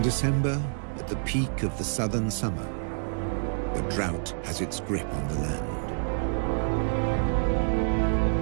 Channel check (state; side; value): silent; left; digital silence